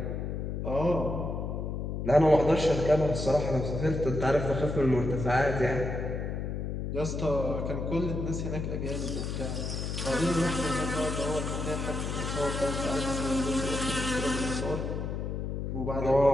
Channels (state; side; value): noise; left; hum, 3 dB below the sound